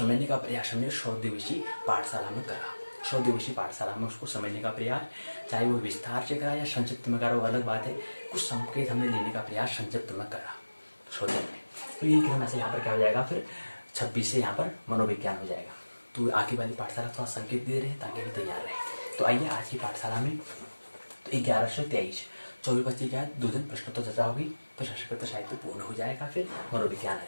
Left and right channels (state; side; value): inverted; both; correlation -1.00